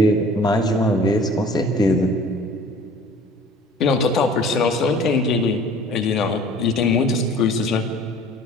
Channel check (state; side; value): normal; both; correlation 0.48